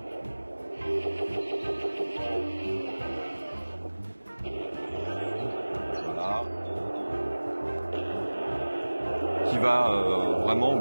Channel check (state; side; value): inverted; both; correlation -1.00